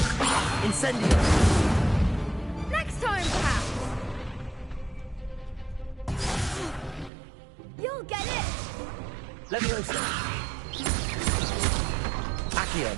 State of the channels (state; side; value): drops out; left; at 7.1 s